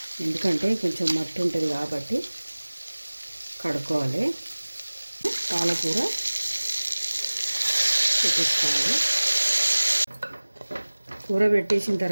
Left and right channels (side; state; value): both; inverted; correlation -1.00